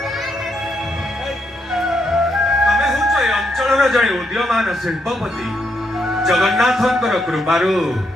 ତମେ ହେଉଛ ଏ ଅଞ୍ଚଳର ଜଣେ ଉଦୀୟମାନ ଶିଳ୍ପପତି। ଜଗନ୍ନାଥଙ୍କର କୃପାରୁ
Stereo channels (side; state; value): both; normal; correlation 0.78